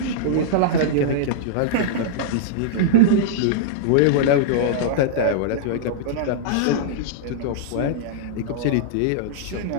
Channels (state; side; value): different; both; correlation -0.02